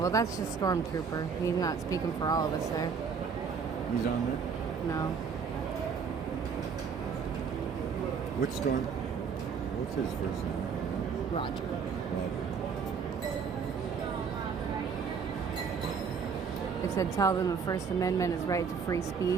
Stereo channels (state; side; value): quieter; left; 6.1 dB